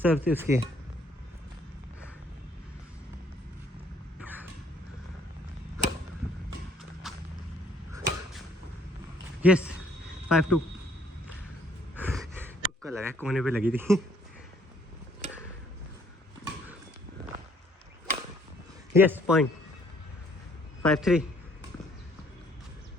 सर थी उसकी। यस 5-2। तुक्का लगा, कोने पे लगी थी। Yes point. 5-3।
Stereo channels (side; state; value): both; normal; correlation 0.62